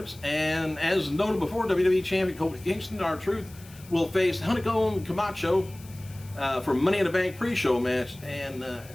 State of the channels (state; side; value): noise; left; hiss, 22 dB below the sound